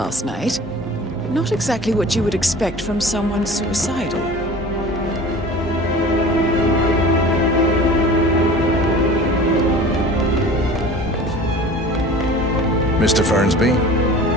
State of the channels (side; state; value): both; normal; correlation 0.40